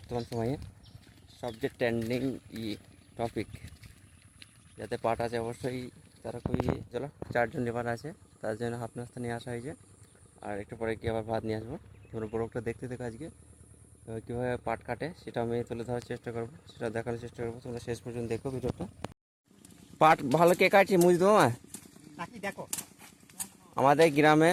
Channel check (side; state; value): both; identical; correlation 1.00